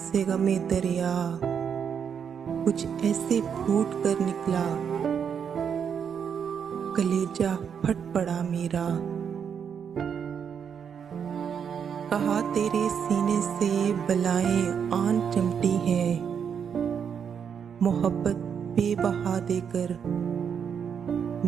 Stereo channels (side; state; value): left; quieter; 7.4 dB